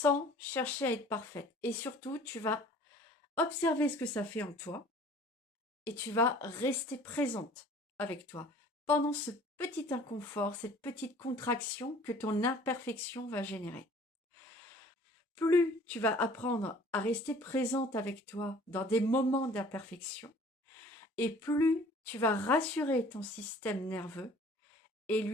chercher à être parfaite. Et surtout, tu vas observer ce que ça fait en toi et tu vas rester présente avec toi pendant ce petit inconfort, cette petite contraction que ton imperfection va générer. Plus tu vas apprendre à rester présente avec toi dans des moments d'imperfection, et plus tu vas rassurer ton système nerveux et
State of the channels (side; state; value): both; normal; correlation 0.50